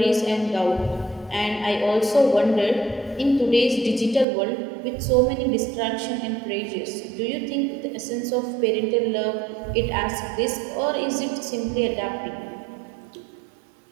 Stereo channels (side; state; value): left; drops out; at 4.2 s